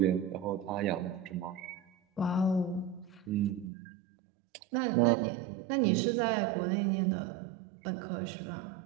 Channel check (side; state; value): left; drops out; at 3.7 s